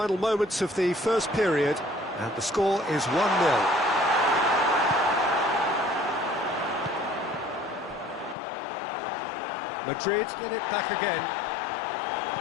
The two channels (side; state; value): right; drops out; at 8.3 s